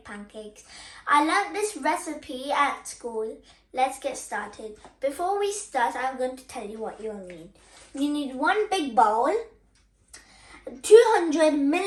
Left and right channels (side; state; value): both; identical; correlation 1.00